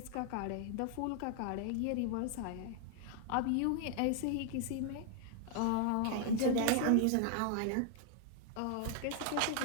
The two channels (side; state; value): both; different; correlation 0.00